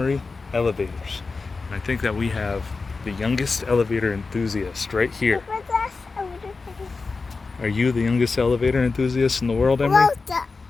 elevators. And I think that we have the youngest elevator enthusiast right here. Are you the youngest elevator enthusiast in the world, Emery?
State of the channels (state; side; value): quieter; right; 4.2 dB